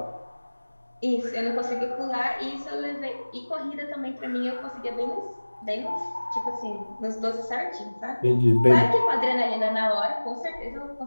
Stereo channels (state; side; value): inverted; both; correlation -1.00